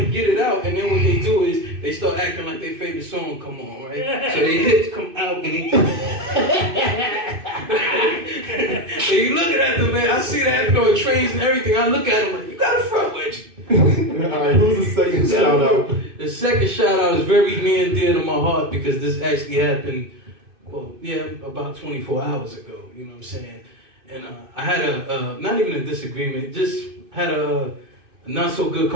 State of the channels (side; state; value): left; late; 2.6 ms